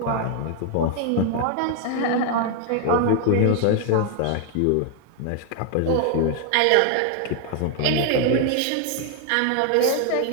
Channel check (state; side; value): different; both; correlation 0.00